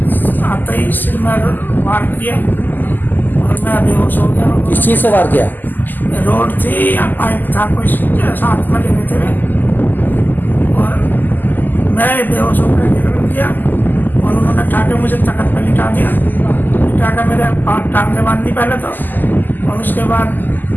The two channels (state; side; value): late; right; 0.087 ms